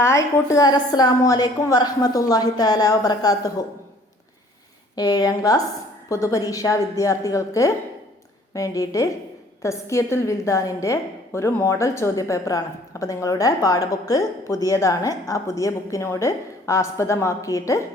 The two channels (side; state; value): both; normal; correlation 0.55